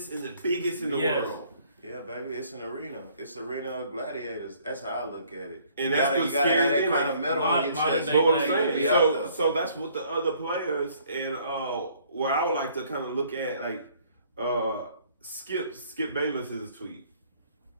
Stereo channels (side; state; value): both; inverted; correlation -0.61